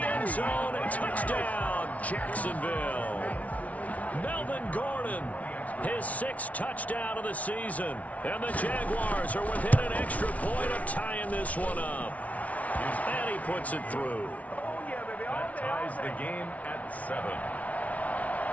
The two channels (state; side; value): late; right; 0.068 ms